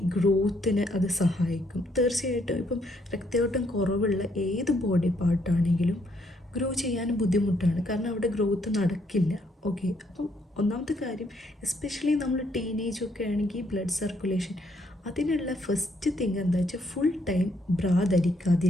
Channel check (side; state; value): both; normal; correlation 0.71